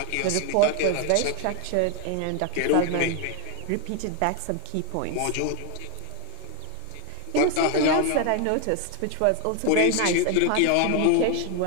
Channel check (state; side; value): different; both; correlation 0.01